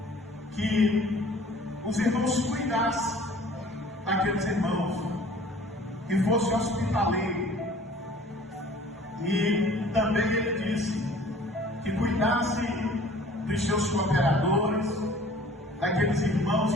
que os irmãos cuidassem daqueles irmãos, que fosse hospitaleiro. E também ele disse que cuidasse dos seus cooperadores, daqueles irmãos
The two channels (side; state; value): both; normal; correlation 0.50